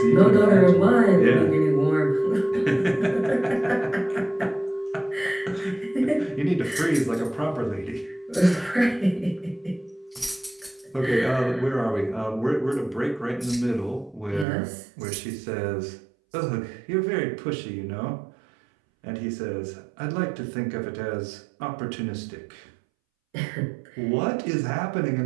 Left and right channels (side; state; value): left; drops out; at 14.5 s